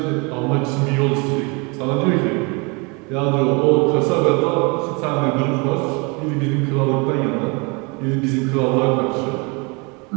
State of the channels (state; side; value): quieter; left; 30.0 dB